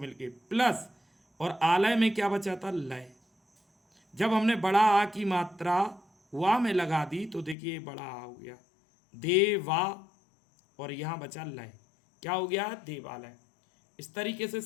प्लस, और आलय में क्या बचा था? लय। जब हमने बड़ा आ की मात्रा वा में लगा दी तो देखिए बड़ा आ हो गया, देवा, और यहां बचा लय। क्या हो गया? देवालय। इस तरीके से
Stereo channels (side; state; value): right; drops out; at 7.6 s